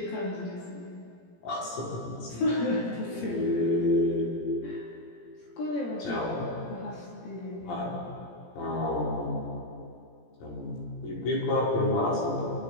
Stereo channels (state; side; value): late; right; 17 ms